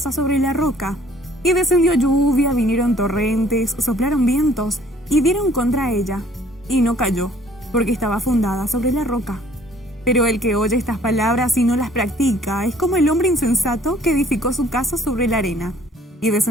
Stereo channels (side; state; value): both; normal; correlation 0.57